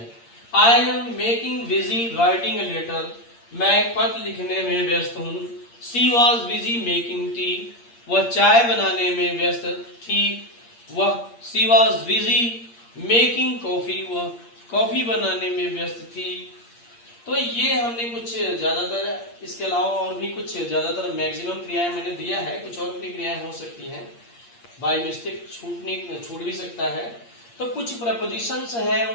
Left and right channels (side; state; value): right; late; 8.6 ms